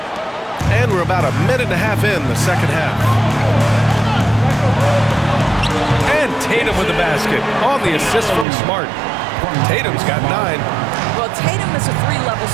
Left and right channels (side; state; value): left; drops out; at 8.5 s